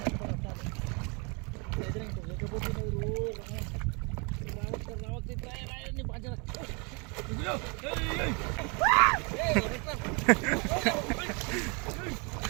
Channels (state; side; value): quieter; left; 32.0 dB